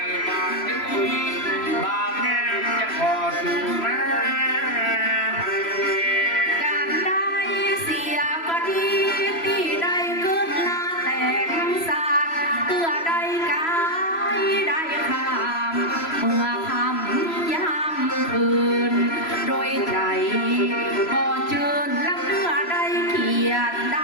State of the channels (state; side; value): late; right; 3.0 ms